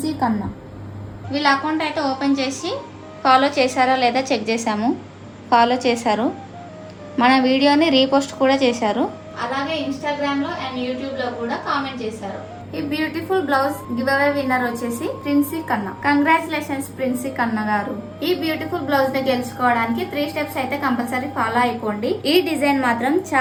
కన్నా. వీళ్ళ అకౌంట్ అయితే ఓపెన్ చేసి ఫాలో చేశారా లేదా చెక్ చేశాము. ఫాలో చేశారు, మన వీడియోని రీపోస్ట్ కూడా చేశారు. అలాగే ఇన్స్టాగ్రామ్లో అండ్ యూట్యూబ్లో కూడా కామెంట్ చేశారు. ఈ beautiful blouse give away winner వచ్చేసి ప్రిన్సీ కన్నా. కంగ్రాచులేషన్స్ ప్రిన్సీ కన్నా గారు. ఈ బ్యూటిఫుల్ బ్లౌజ్ ని గెలుచుకోవడానికి 3 steps అయితే కంపల్సరీ ఫాలో అయిపోండి. ఈ డిజైన్ మాత్రం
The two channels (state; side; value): identical; both; correlation 1.00